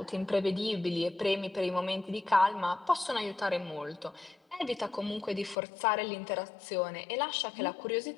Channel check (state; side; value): drops out; right; at 5.6 s